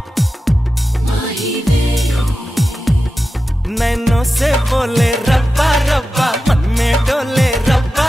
नैनों से बोले रब्बा रब्बा मन में डोले रब्बा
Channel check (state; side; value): normal; both; correlation 0.92